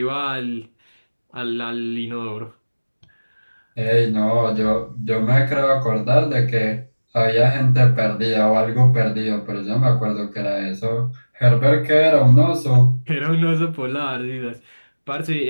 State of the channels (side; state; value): both; inverted; correlation -1.00